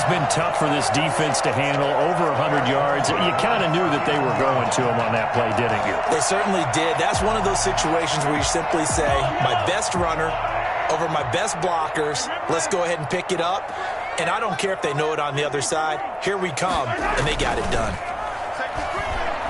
been tough for this defense to handle, over 100 yards. You kind of knew that they were going to him on that play, didn't you? They certainly did. That's one of those situations where you simply say, my best runner over my best blockers. Let's go ahead and pick it up. And I don't care if they know it on the other side. Here we come, and they got it done.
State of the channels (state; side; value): identical; both; correlation 1.00